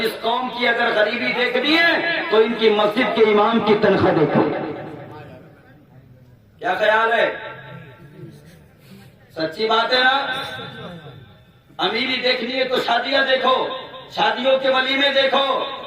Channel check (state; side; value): identical; both; correlation 1.00